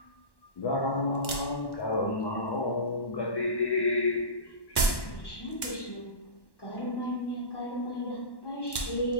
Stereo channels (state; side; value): late; right; 1.1 ms